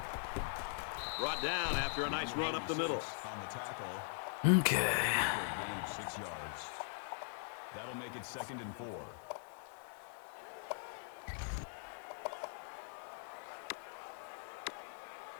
Brought down after a nice run up the middle. On the tackle. Okay. Gain of 6 yards. That'll make it 2nd and 4.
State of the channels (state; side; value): silent; right; 50 dB below the other